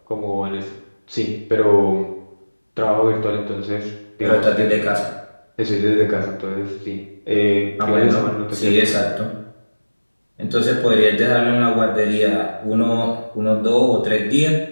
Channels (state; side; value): inverted; both; correlation -1.00